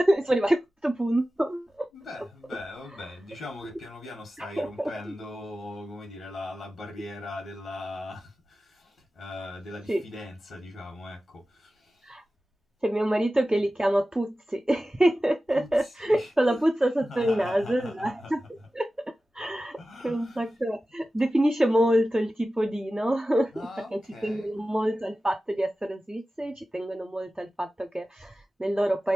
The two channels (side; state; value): both; normal; correlation 0.95